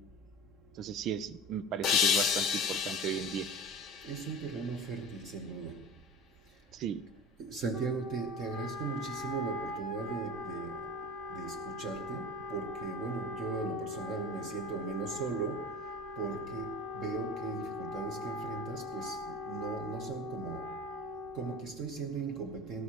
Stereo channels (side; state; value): both; normal; correlation 0.35